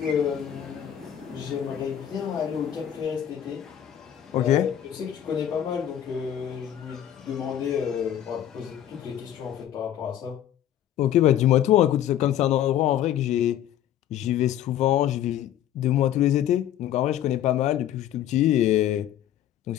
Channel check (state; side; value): quieter; right; 11.0 dB